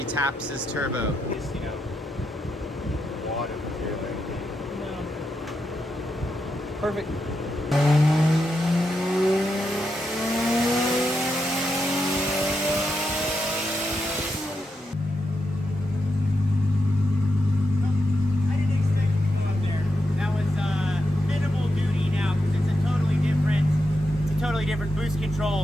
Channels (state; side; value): normal; both; correlation 0.85